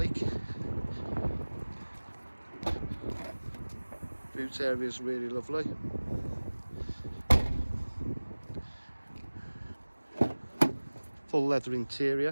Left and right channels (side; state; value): both; inverted; correlation -1.00